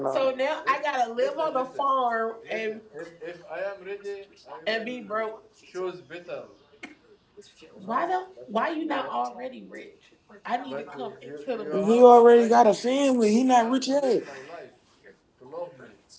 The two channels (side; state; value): both; identical; correlation 1.00